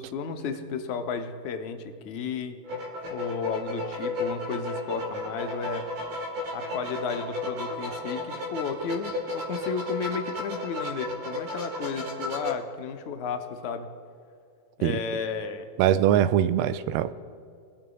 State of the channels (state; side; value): late; left; 18 ms